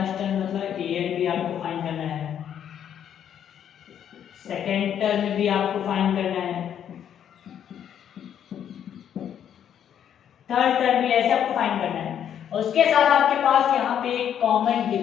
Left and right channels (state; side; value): quieter; right; 9.3 dB